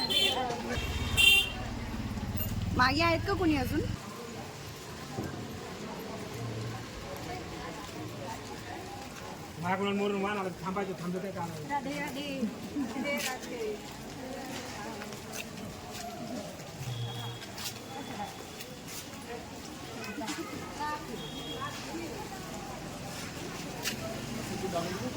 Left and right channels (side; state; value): both; identical; correlation 1.00